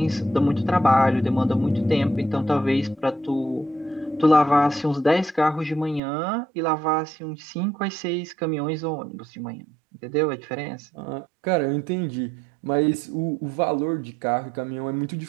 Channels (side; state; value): left; drops out; at 6.0 s